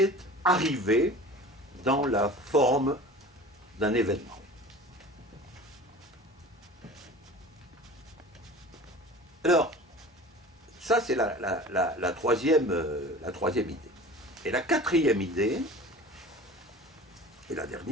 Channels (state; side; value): normal; both; correlation 0.39